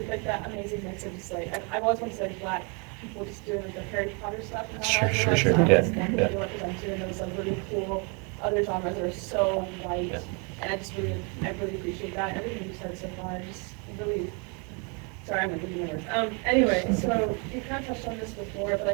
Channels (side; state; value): left; quieter; 34.1 dB